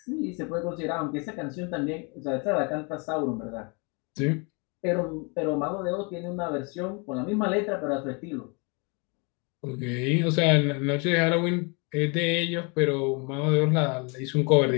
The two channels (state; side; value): quieter; right; 32.5 dB